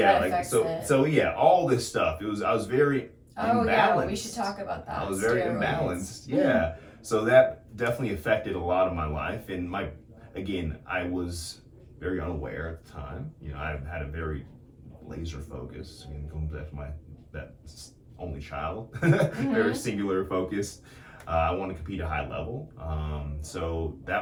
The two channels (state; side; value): identical; both; correlation 1.00